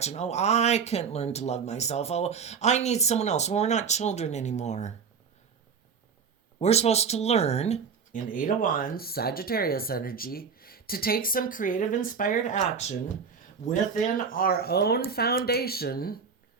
Oh, I can't learn to love myself. Oh, I need someone else. Well, we're not children anymore. We're supposed to learn, in Eight of Wands, Sagittarius energy, to take some creative, inspired action within our own foundation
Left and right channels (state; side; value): quieter; left; 6.0 dB